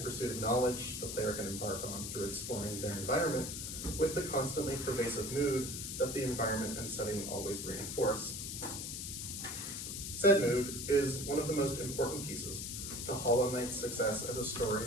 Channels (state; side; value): noise; left; hiss, 5 dB below the sound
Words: pursuit of knowledge the player can embark on through exploring their environment with the constantly pervasive mood that the environment and setting always reinforce. Said mood is one of the most important pieces to Hollow Knight's success as a story